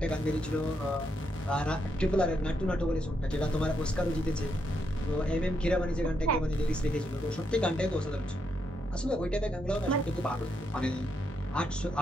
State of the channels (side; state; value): both; normal; correlation 0.79